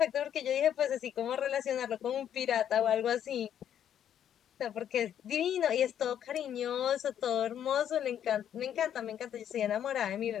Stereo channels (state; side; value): quieter; right; 9.8 dB